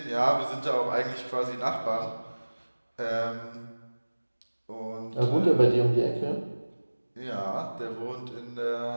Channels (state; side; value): inverted; both; correlation -1.00